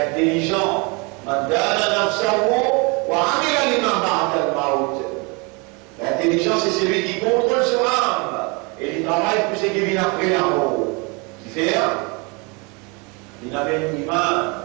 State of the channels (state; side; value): quieter; left; 30.1 dB